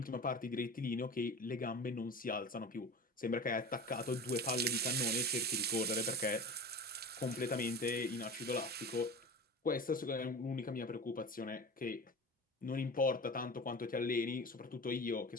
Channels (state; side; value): normal; both; correlation 0.33